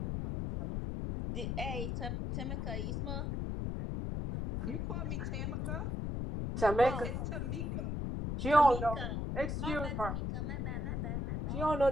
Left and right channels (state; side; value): noise; left; rumble, 2 dB below the sound